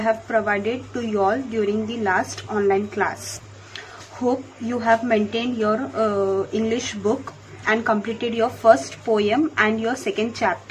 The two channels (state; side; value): identical; both; correlation 1.00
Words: provided to you all during the last online class. Hope you have maintained your English book and completed your first poem and your second